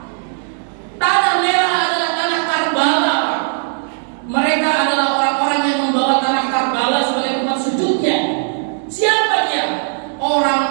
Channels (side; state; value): left; silent; digital silence